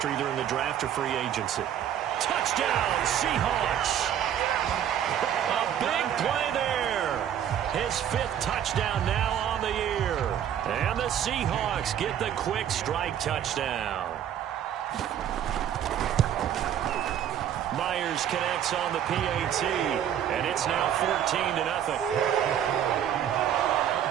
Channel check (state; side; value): quieter; left; 10.0 dB